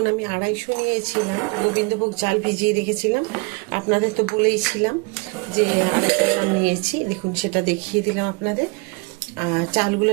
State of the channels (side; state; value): left; quieter; 29.8 dB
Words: আমি 250 নিয়েছিলাম গোবিন্দভোগ চাল, ভিজিয়ে রেখেছিলাম, আপনাদের তো বলেইছিলাম যে 250 গ্রাম নিয়েছি। দেখুন সেটা দেখিয়ে দিলাম আপনাদের।